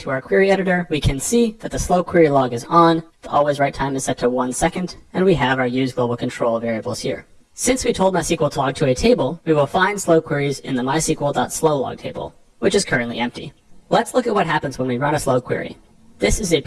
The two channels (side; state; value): both; identical; correlation 1.00